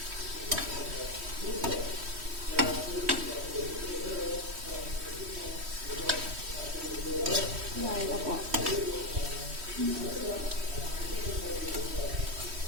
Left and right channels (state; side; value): late; left; 3.1 ms